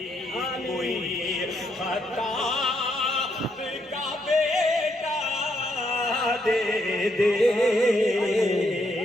कोई खताब का बेटा दे दे।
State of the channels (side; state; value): both; normal; correlation 0.76